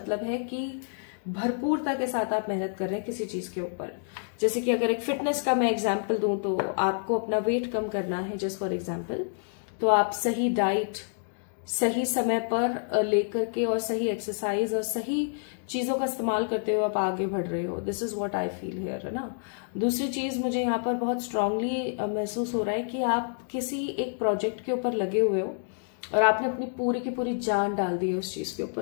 है कि भरपूरता के साथ आप मेहनत कर रहे हैं किसी चीज के ऊपर। जैसे कि अगर एक फिटनेस का मैं एग्जाम्पल दूं तो आपको अपना वेट कम करना है, जस्ट फॉर एग्जाम्पल, तो आप सही डाइट सही समय पर लेकर के और सही एक्सरसाइज और सही चीजों का इस्तेमाल करते हुए आप आगे बढ़ रहे हो। This is what I feel here, है ना। दूसरी चीज मुझे यहाँ पर बहुत स्ट्रांगली महसूस हो रहा है कि आप किसी एक प्रोजेक्ट के ऊपर लगे हुए हो और आपने अपनी पूरी की पूरी जान डाल दी है उस चीज के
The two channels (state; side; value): silent; right; digital silence